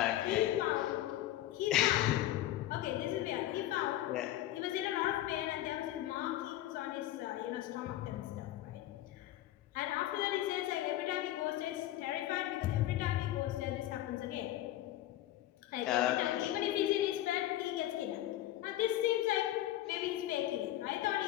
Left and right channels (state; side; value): quieter; right; 14.1 dB